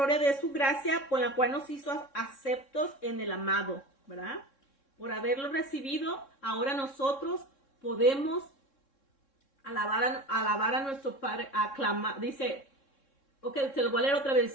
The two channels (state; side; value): late; right; 3.6 ms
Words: de su gracia, con la cual nos hizo aceptos en el amado, ¿verdad? Por haberlo recibido, ahora nosotros podemos alabar a nuestro Padre, aclamar, dice, ok, se lo voy a leer otra vez,